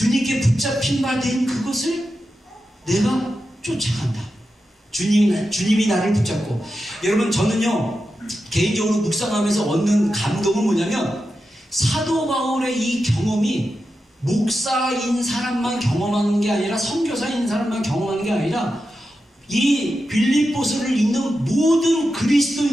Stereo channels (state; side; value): normal; both; correlation 0.90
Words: 붙잡힌 바 된 그것을 내가 쫓아간다. 주님이 나를 붙잡고. 여러분 저는요, 개인적으로 묵상하면서 얻는 감동은 뭐냐면, 사도 바울의 이 경험이 목사인 사람만 경험하는 게 아니라, 선교사인 사람만 경험하는 게 아니라 이 빌립보서를 읽는 모든